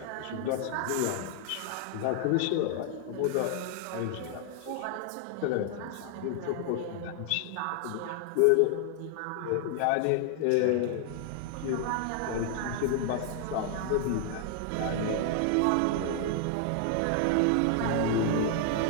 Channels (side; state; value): both; different; correlation 0.00